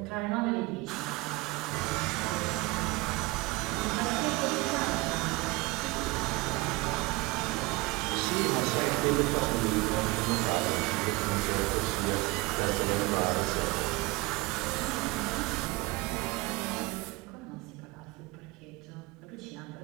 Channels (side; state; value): left; quieter; 22.3 dB